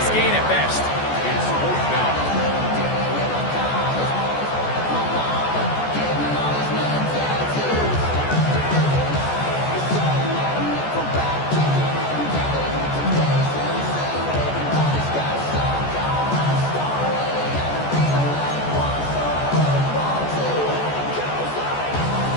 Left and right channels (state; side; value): late; right; 14 ms